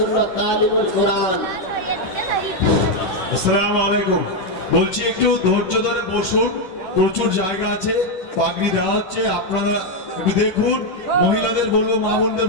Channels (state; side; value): late; right; 11 ms